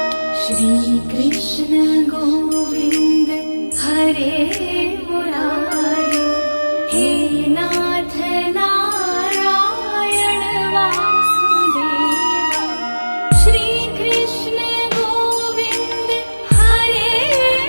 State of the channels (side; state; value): both; inverted; correlation -1.00